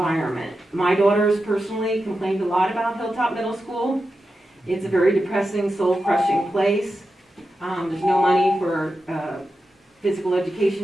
My daughters personally complained a lot about Hilltop Middle School. It's a very depressing, soul-crushing place. There's no money for physical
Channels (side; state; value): both; normal; correlation 0.90